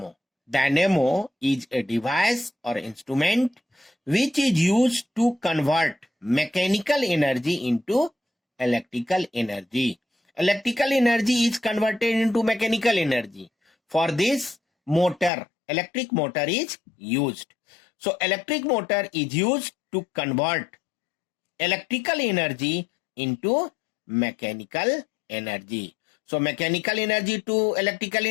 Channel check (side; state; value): right; drops out; at 15.3 s